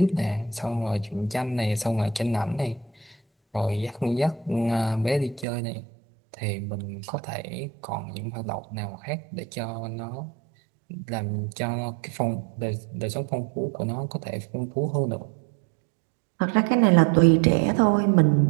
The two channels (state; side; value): drops out; left; at 5.5 s